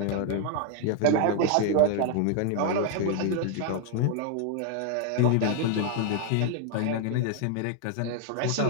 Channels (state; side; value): different; both; correlation 0.00